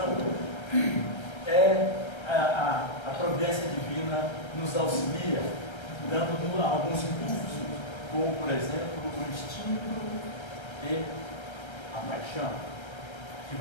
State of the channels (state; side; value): late; right; 1.3 ms